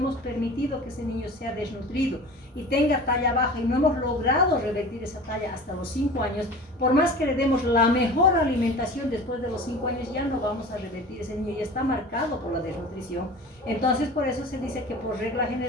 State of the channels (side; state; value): both; normal; correlation 0.38